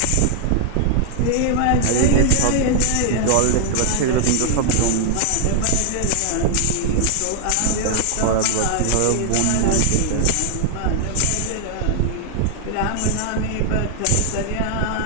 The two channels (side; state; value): both; different; correlation 0.00